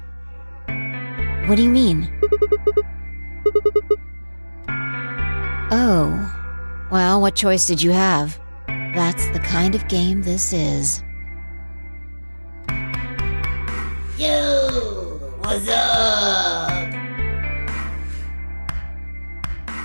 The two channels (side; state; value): both; inverted; correlation -1.00